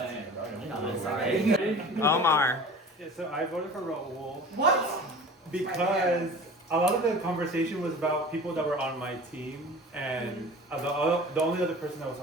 sorry. Omar. Yeah, so I voted for Raul. What? Because a lot of the conversation was about people that were on my team, and the only other person that was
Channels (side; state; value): both; normal; correlation 0.39